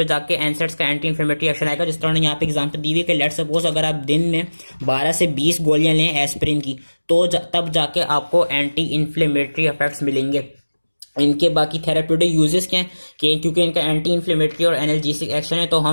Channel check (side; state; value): both; inverted; correlation -1.00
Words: जाके एनसेट्स का एंटी इन्फ्लेमेटरी एक्शन आएगा। जिस तरह यहाँ पे एग्जांपल दी हुई है कि लेट्स सपोज अगर आप दिन में 12 से 20 गोलियां लें एस्पिरिन की तो तब जाके आपको एंटी इन्फ्लेमेटरी इफेक्ट्स मिलेंगे। इनके बाकी थेराप्यूटिक यूजेस क्या हैं कि क्योंकि इनका एंटी इन्फ्लेमेटरी और एनाल्जेसिक एक्शन है तो